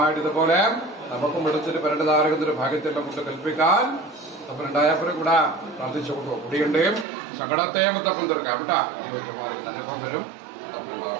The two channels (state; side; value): drops out; left; at 7.1 s